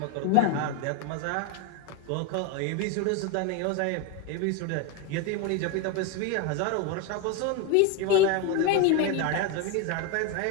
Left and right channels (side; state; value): both; different; correlation 0.02